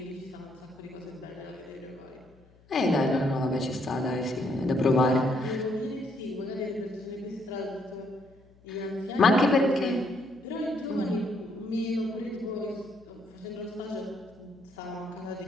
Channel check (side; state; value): left; noise; hum, 28 dB below the sound